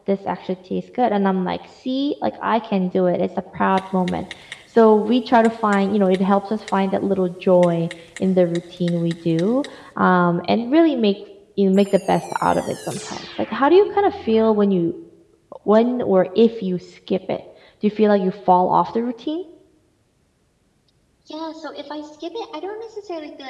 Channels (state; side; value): identical; both; correlation 1.00